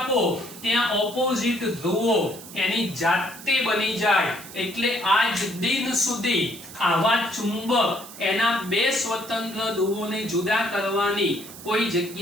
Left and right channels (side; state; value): right; noise; hiss, 15 dB below the sound